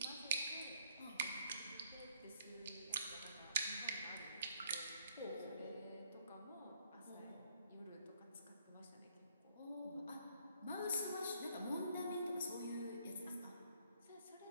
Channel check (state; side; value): inverted; both; correlation -0.66